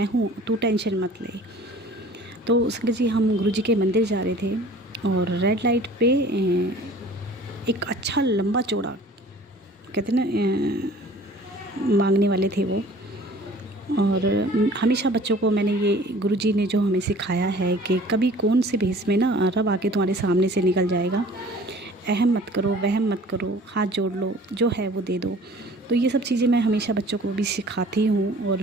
हूँ, तू टेंशन मत ले। तो संगत जी हम गुरुजी के मंदिर जा रहे थे और रेड लाइट पे एक अच्छा लंबा चौड़ा, कहते ना, मांगने वाले थे वो। और हमेशा बच्चों को मैंने ये गुरुजी ने जो हमें सिखाया है कि कभी कौन से भेष में ना रब आके तुम्हारे सामने से निकल जाएगा, अहम मत करो, वहम मत करो, हाथ जोड़ लो, जो है वो दे दो। तो ये सब चीज़ें मैं हमेशा बच्चों को भी सिखाती हूँ, और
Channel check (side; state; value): both; normal; correlation 0.48